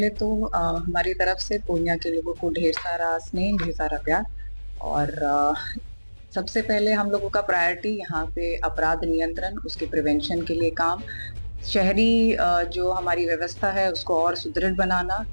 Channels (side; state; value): both; inverted; correlation -1.00